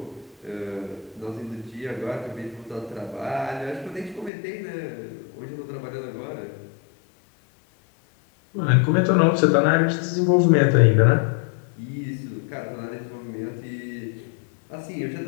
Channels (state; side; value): drops out; right; at 4.3 s